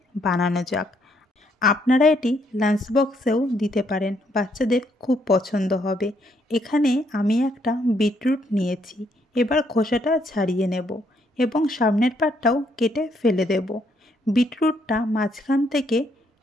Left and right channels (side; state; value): both; normal; correlation 0.72